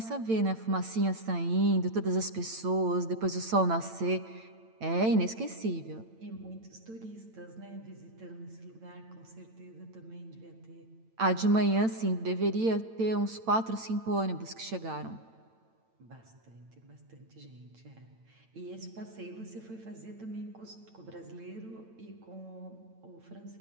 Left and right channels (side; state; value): left; late; 8.9 ms